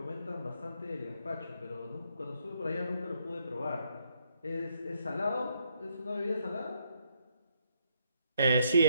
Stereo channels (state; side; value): inverted; both; correlation -0.74